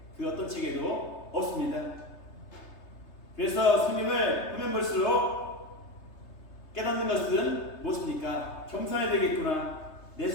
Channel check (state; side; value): late; right; 3.3 ms